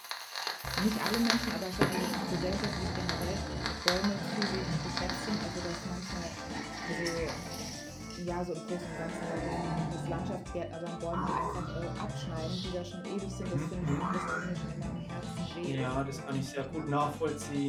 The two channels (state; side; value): identical; both; correlation 1.00